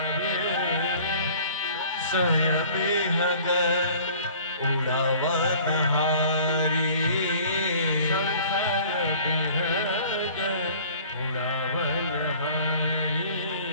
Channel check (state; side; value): inverted; both; correlation -0.49